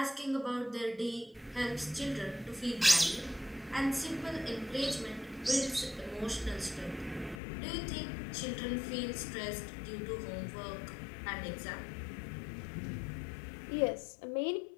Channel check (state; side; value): drops out; right; at 7.4 s